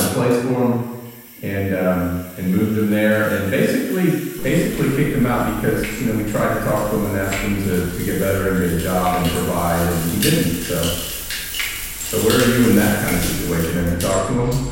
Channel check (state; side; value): identical; both; correlation 1.00